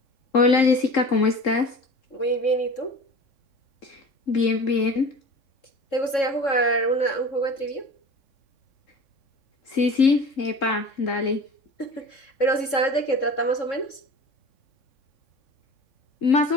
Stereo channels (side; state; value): right; late; 3.7 ms